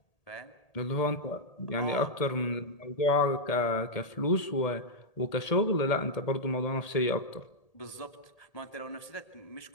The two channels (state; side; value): late; right; 1.8 ms